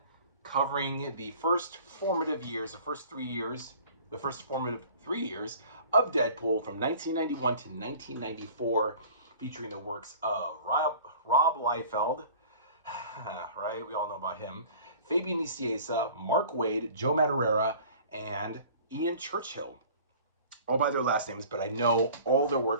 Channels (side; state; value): both; inverted; correlation -0.46